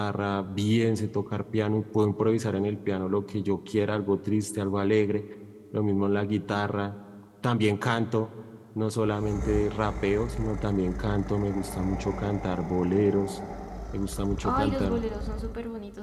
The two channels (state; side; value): identical; both; correlation 1.00